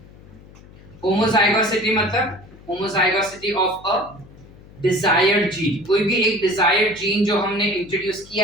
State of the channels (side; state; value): left; noise; hum, 22 dB below the sound